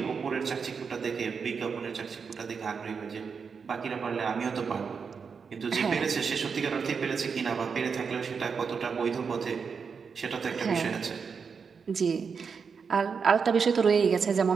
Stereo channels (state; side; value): quieter; left; 5.8 dB